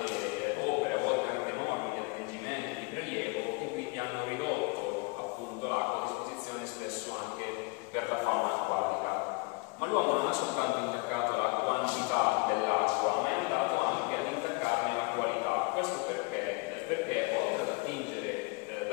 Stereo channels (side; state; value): right; quieter; 28.4 dB